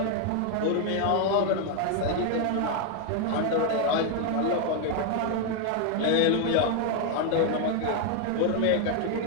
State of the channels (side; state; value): both; different; correlation 0.00